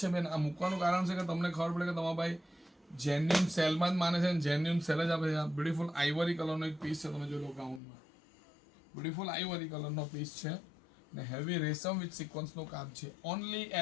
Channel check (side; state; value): right; drops out; at 7.8 s